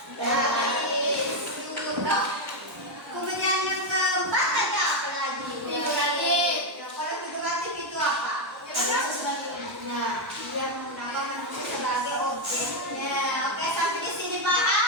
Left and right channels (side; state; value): both; normal; correlation 0.04